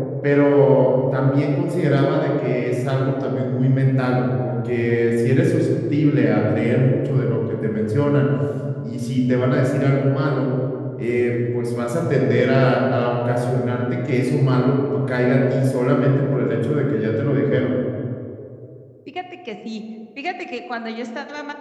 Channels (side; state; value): both; identical; correlation 1.00